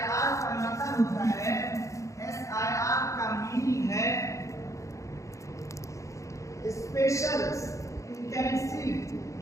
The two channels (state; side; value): late; right; 0.15 ms